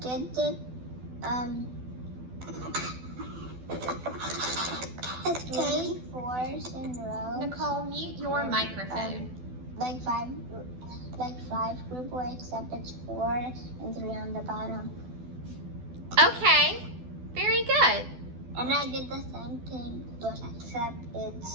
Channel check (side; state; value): left; late; 12 ms